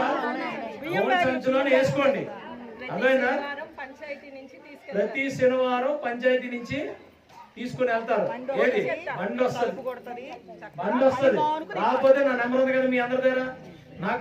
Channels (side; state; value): both; identical; correlation 1.00